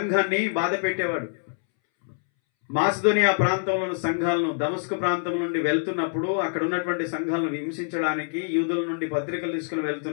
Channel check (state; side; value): silent; right; 61 dB below the other